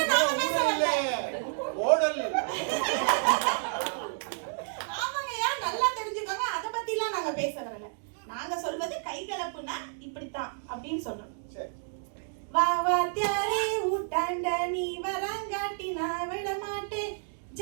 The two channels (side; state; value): left; silent; digital silence